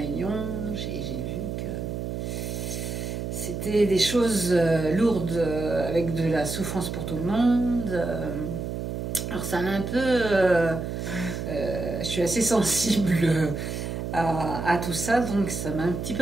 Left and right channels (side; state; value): right; noise; hum, 4 dB below the sound